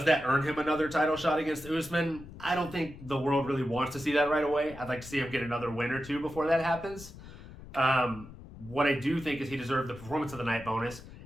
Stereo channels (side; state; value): left; noise; rumble, 16 dB below the sound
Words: that earn him another title shot against Usman? I don't think the world really wants to see that right away. I'd like to see him get another win or two before that happens. What I do think is he deserved the performance of the night bonus,